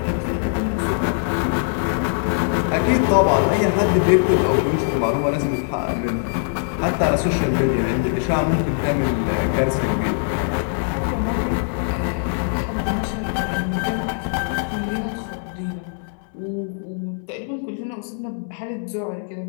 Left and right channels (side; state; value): right; silent; digital silence